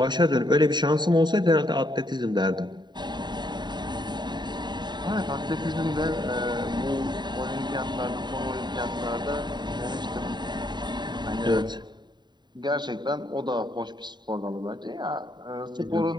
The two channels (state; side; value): late; left; 0.21 ms